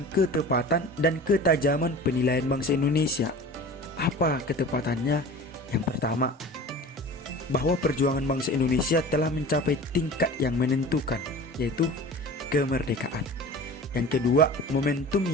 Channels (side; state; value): both; normal; correlation 0.38